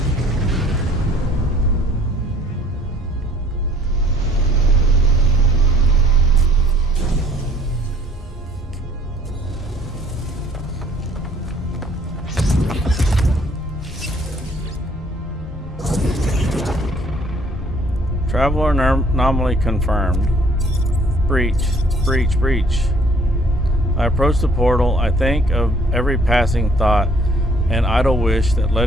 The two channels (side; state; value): both; normal; correlation 0.59